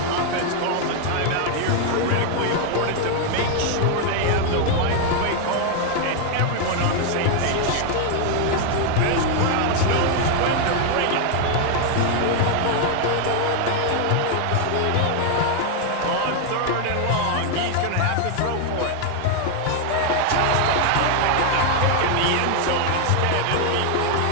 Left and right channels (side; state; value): both; different; correlation 0.00